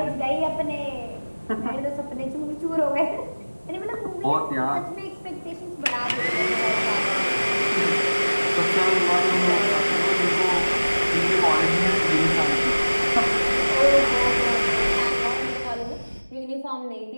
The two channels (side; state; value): both; inverted; correlation -1.00